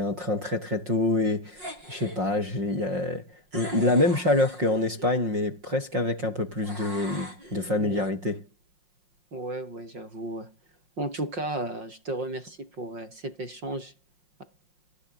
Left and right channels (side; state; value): left; late; 5.6 ms